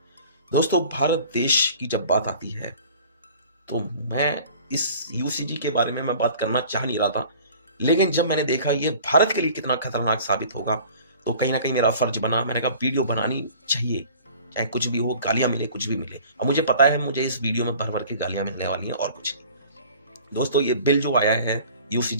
दोस्तों, भारत देश की जब बात आती है तो मैं इस यूसीजी के बारे में मैं बात करना चाह नहीं रहा था, लेकिन जब मैंने देखा ये भारत के लिए कितना खतरनाक साबित होगा तो कहीं ना कहीं मेरा फर्ज बना। मैंने कहा वीडियो बनानी चाहिए, चाहे कुछ भी हो, गालियां मिले कुछ भी मिले। और मुझे पता है मुझे इस वीडियो में भर भर के गालियां मिलने वाली हैं और कुछ नहीं। दोस्तों ये बिल जो आया है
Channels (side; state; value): both; inverted; correlation -0.47